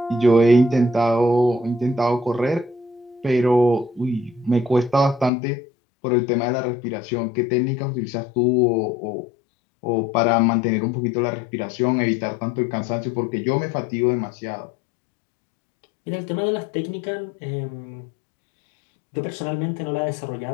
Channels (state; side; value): drops out; right; at 5.3 s